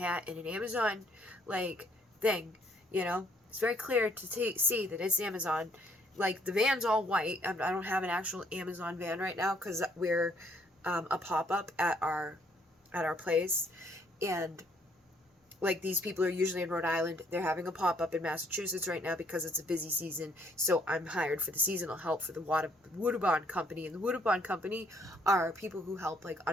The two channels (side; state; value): both; normal; correlation 0.66